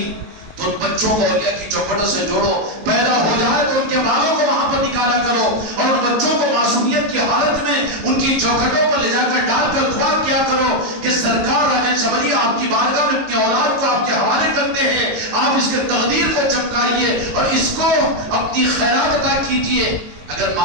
تو ان بچوں کو اولیاء کی چوکھٹوں سے جوڑو، پیدا ہو جائے تو ان کے بالوں کو وہاں پر نکالا کرو، اور ان بچوں کو معصومیت کی حالت میں ان کی چوکھٹوں پر لے جا کر ڈال کر دعا کیا کرو کہ سرکار راجن شبری آپ کی بارگاہ میں اپنی اولاد کو آپ کے حوالے کرتے ہیں، آپ اس کے تقدیر کو چمکائیے اور اس کو اپنی خیرات عطا کیجئے۔ اگر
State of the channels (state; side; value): late; left; 19 ms